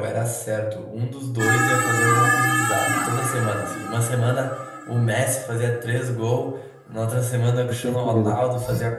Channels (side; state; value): both; identical; correlation 1.00